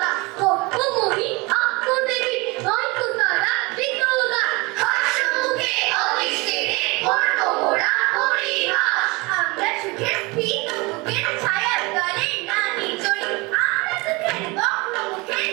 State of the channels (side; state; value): left; quieter; 25.3 dB